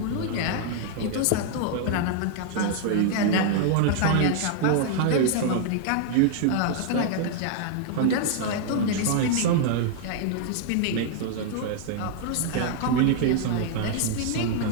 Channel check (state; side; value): different; both; correlation -0.01